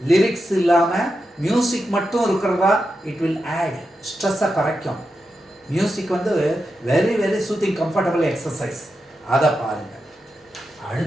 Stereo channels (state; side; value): normal; both; correlation 0.88